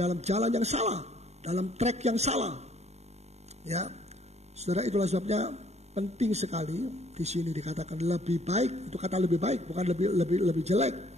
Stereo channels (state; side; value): late; left; 0.32 ms